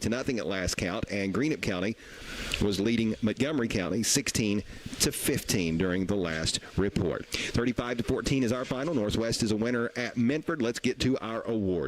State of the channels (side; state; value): both; identical; correlation 1.00